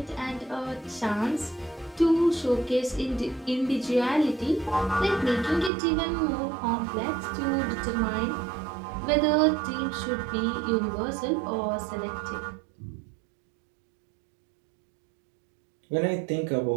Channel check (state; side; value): drops out; left; at 5.7 s